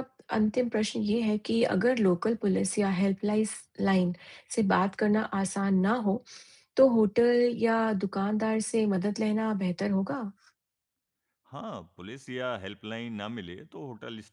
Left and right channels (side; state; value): both; identical; correlation 1.00